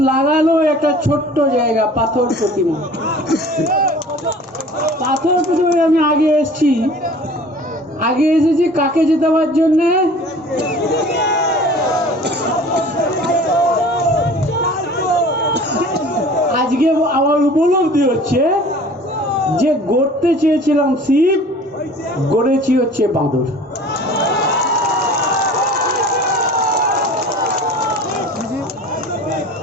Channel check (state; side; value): normal; both; correlation 0.45